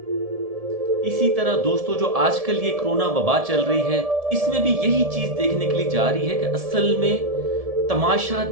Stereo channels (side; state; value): left; late; 1.7 ms